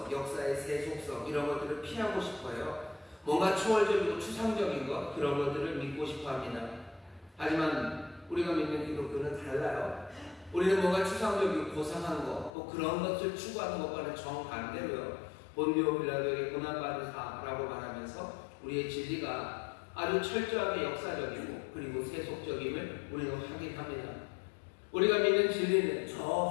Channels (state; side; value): drops out; right; at 12.5 s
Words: 역사의 세속성 이런 것들을 피하고 싶어요. 뭔가 초월적이고 추상적인 것, 그런 것들을 믿고 싶어 합니다. 하지만 우리가 믿는 기독교는 달라요. 우리는 뭔가 추상적이고 고상한 것, 또 그런 것을 추구하는 것과는 정반대로요. 본디오 빌라도에게 고난받으사라고 말하면서 우리의 진리가 아주 철저하게 역사적이고 그리고 세속적임을 우리는 확인합니다. 우리가 믿는 진리는